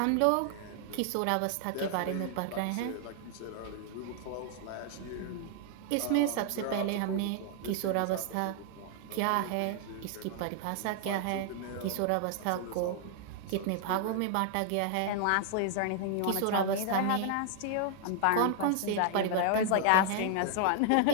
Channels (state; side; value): different; both; correlation 0.00